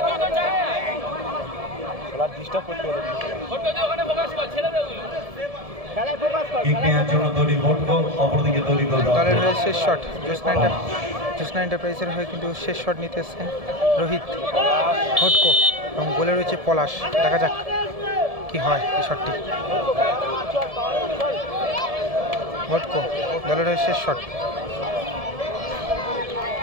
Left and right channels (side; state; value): left; late; 1.7 ms